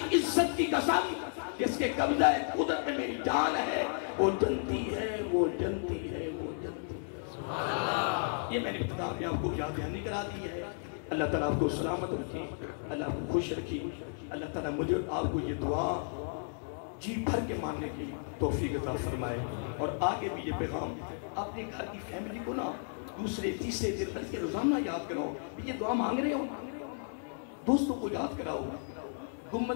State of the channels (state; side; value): silent; right; digital silence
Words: عزت کی قسم جس کے قبضہ قدرت میں میری جان ہے، وہ جنتی ہے، وہ جنتی ہے، وہ جنتی ہے. یہ میں نے ابتدا میں آپ کو یاد دہانی کرا دی ہے. اللہ تعالیٰ آپ کو سلامت رکھے، اللہ آپ کو خوش رکھے. اللہ تعالیٰ مجھے آپ کو یہ دعا جی بھر کے ماننے کی توفیق عطا فرمائے. اور آگے بھی یہ پیغام اپنے گھر کی فیملی کو نا دوسرے تیسرے دن بلکہ روزانہ یاد کراؤ. یہ دعا مانگ رہے ہو، دوستوں کو یاد کراؤ.